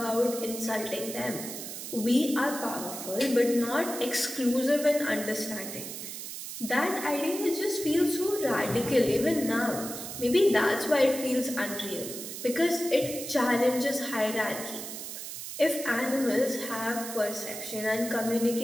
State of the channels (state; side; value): noise; right; hiss, 8 dB below the sound